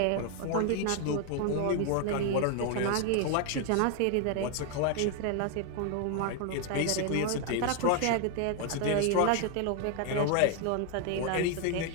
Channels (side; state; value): both; different; correlation 0.01